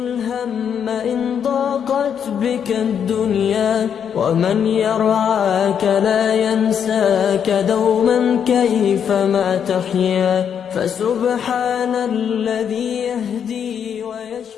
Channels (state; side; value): quieter; right; 8.0 dB